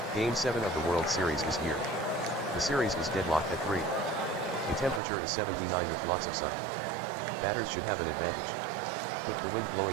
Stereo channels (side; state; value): left; drops out; at 5.0 s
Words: Game 7 of the World Series is here. The series is deadlocked at 3. The temperature is 79 with lots of sun. Batters should have an advantage. With the wind